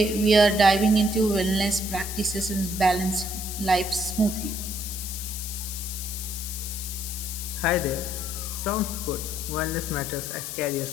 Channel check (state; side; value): noise; left; hiss, 6 dB below the sound